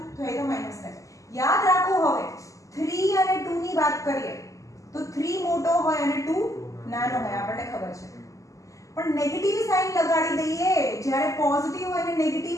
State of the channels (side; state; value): right; late; 0.16 ms